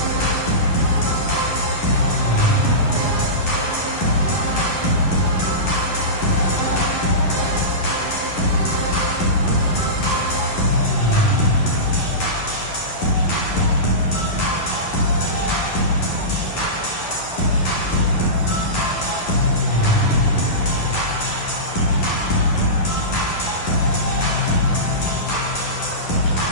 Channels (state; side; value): late; right; 11 ms